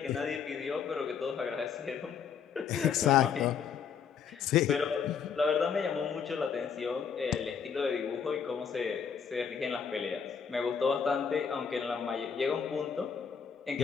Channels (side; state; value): right; quieter; 6.9 dB